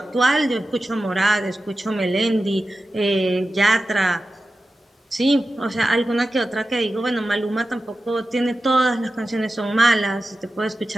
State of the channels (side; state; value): both; normal; correlation 0.93